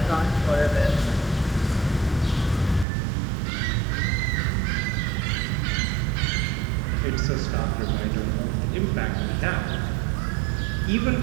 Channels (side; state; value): left; drops out; at 2.9 s